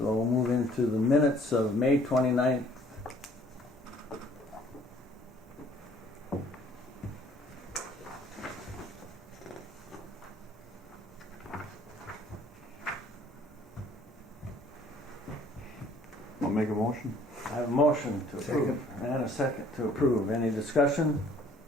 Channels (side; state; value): both; normal; correlation 0.58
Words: we'll move into the minutes of May 29th. I'll make a motion. I have a motion to approve and a second to approve. Any discussion?